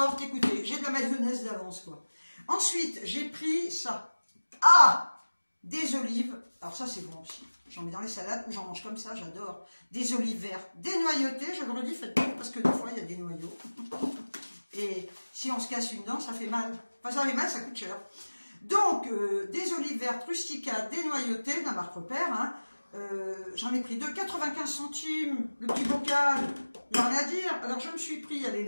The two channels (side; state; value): both; inverted; correlation -1.00